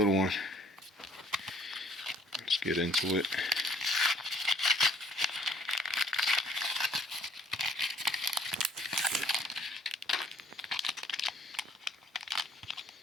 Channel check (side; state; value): both; normal; correlation 0.59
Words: one. Let's get into it.